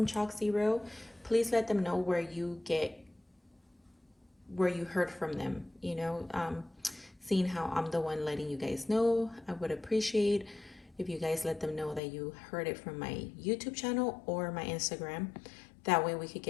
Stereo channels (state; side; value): drops out; right; at 12.0 s